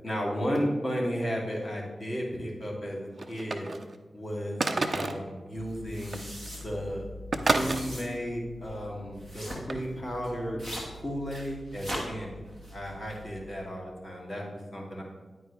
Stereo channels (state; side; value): normal; both; correlation 0.92